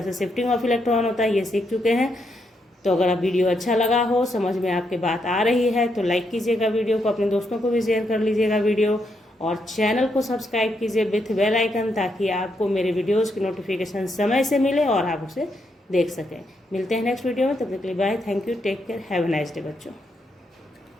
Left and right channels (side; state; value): both; normal; correlation 0.79